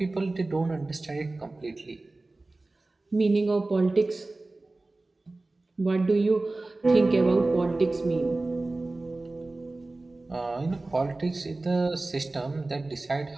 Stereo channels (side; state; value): left; quieter; 3.1 dB